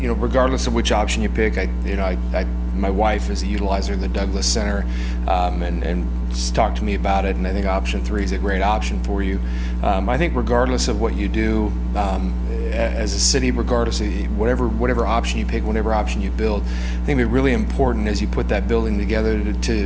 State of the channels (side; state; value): both; identical; correlation 1.00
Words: of which option you pick, my wife is a utilizer of the Douglas Center, and she's talked to me about it, and I think option 3 is a great option for you. I think regardless of what you do, as a city, regardless of whatever option you pick, whatever option you build, I think it'd be really important as you put that building together